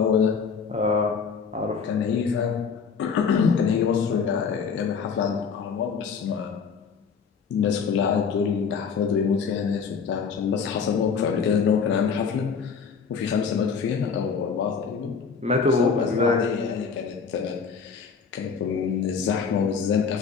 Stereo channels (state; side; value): quieter; right; 5.9 dB